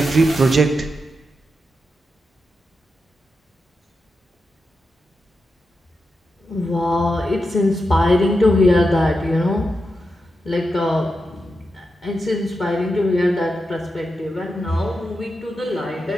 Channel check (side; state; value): both; normal; correlation 0.87